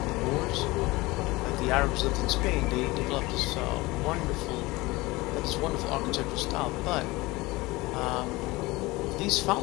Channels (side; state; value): right; quieter; 21.4 dB